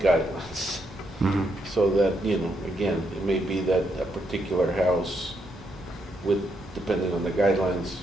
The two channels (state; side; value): normal; both; correlation 0.78